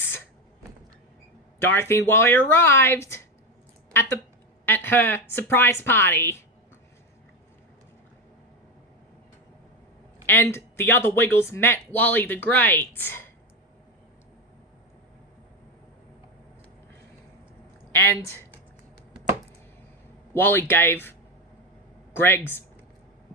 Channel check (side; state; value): both; normal; correlation 0.15